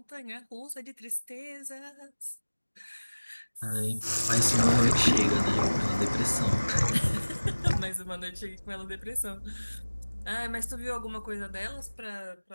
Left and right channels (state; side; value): inverted; both; correlation -1.00